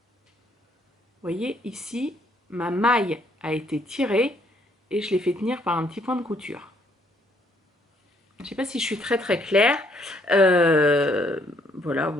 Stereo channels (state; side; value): normal; both; correlation 0.67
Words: Vous voyez, ici, ma maille a été tirée et je l'ai fait tenir par un petit point de couture. Je ne sais pas si je suis très très claire. Voilà,